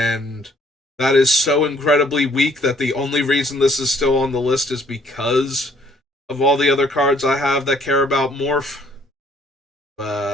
that is so incredibly weak that the only reason this is still on the list is because of all the other cards I have that care about Morph.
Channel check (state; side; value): normal; both; correlation 0.63